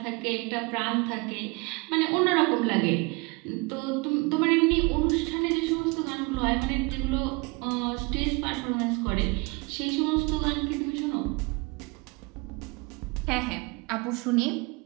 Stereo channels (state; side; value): quieter; left; 27.5 dB